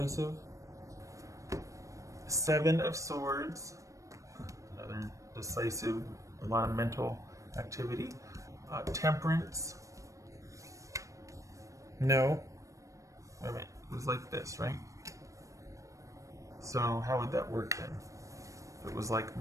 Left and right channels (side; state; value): left; late; 0.16 ms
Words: Seven of Swords. Another decisive, a lot of mental activity. Temperance. No. Wait a minute. It was like this, right? So how would that work then? If it was like